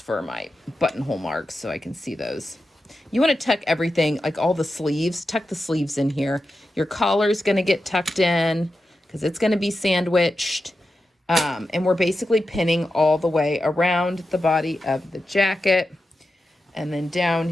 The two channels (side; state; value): both; normal; correlation 0.90